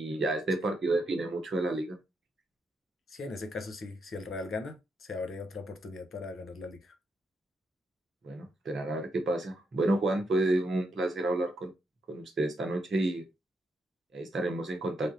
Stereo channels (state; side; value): normal; both; correlation 0.80